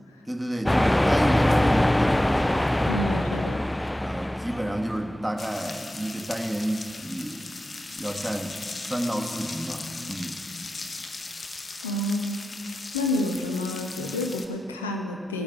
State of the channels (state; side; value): normal; both; correlation 0.91